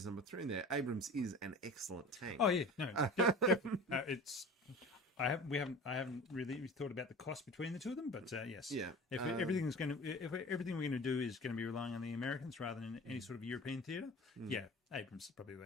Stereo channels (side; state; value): both; normal; correlation 0.37